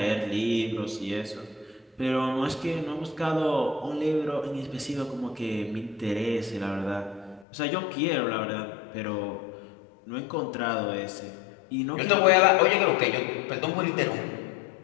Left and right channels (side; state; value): right; drops out; at 7.5 s